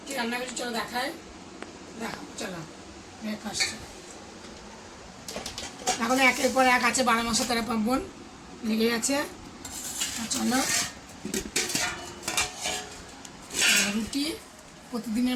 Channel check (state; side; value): identical; both; correlation 1.00